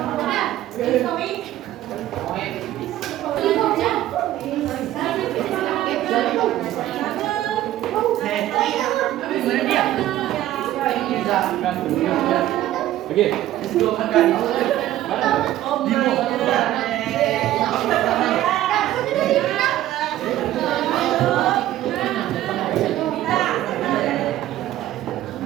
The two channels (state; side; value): quieter; left; 13.8 dB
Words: Oke, dua makan.